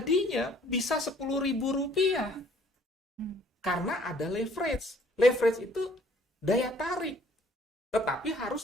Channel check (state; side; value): normal; both; correlation 0.59